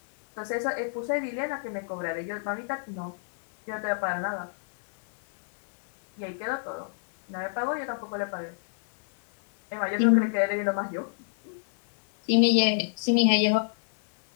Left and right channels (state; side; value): silent; right; 60 dB below the other